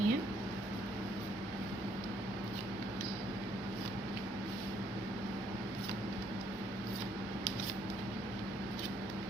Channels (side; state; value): both; normal; correlation 0.68